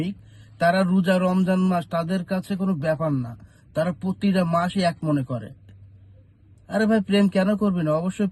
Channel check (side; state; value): both; identical; correlation 1.00